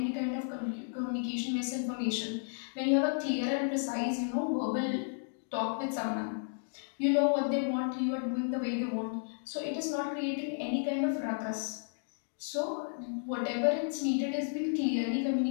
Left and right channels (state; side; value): silent; right; digital silence